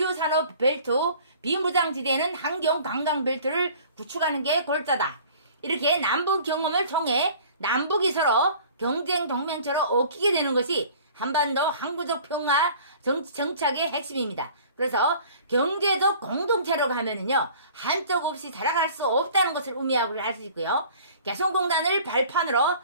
산업 벨트, 비무장지대에는 환경 관광 벨트를 구축하는 게 골자다. 이렇게 남북 경험을 통해 남북이 서로 경쟁 동맹처럼 얽히게 되는 것이 한반도 항구적 평화 정착의 핵심입니다. 그래서 경제적 공동체로 가면은요, 한쪽 없이 살아갈 수 없다는 것을 의미하고 할 수 있고요. 개성공단을 발판으로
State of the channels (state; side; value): inverted; both; correlation -0.48